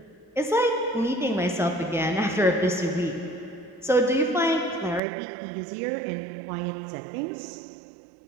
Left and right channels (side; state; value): left; drops out; at 5.0 s